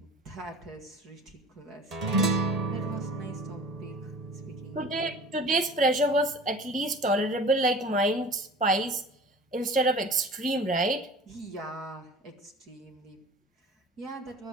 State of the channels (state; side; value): normal; both; correlation 0.42